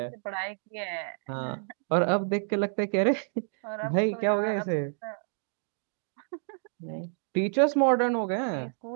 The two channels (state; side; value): silent; left; digital silence